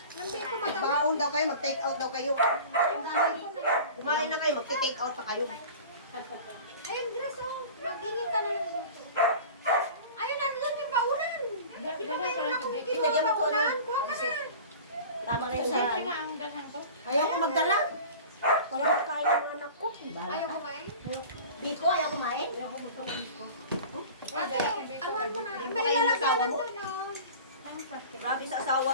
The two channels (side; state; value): both; inverted; correlation -0.39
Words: Lambi ko matawag. Baon daw kayo, mag-take out daw kayo. Kumain na kayo, mag-take out pa kayo. Ayun, Dres, oh. Mag-ingin ka na lang. Ayun, nandun yung baunan. Pinakain ko na kung Lagyan kinuha mo ko, baunan. ano? Kuha ka na. Tama na yun sa... Siyempre nga ang ganang ko. Ayaw ko magdala. Wala ko kain ng anak ko. Ayaw kumain. Biko, ayaw kumain. Ayaw ko gusto ng biko. Ate, anuhan mo na. Hindi May ba kayo lalagyanan asawa mo? doon, oh. Grabe sa asawa ko.